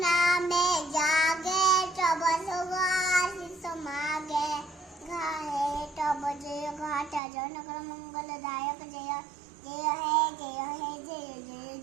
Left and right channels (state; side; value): drops out; left; at 7.2 s